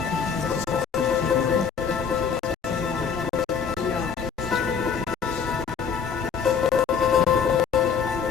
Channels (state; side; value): quieter; right; 6.5 dB